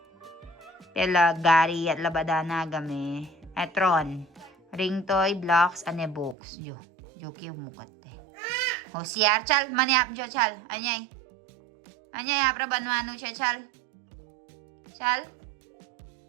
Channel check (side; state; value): left; drops out; at 6.4 s